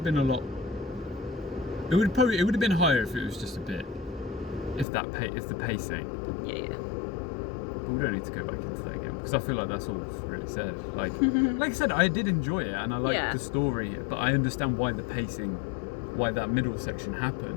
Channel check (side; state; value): right; drops out; at 4.9 s